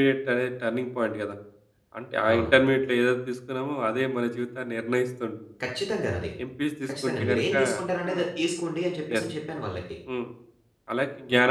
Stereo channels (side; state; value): both; identical; correlation 1.00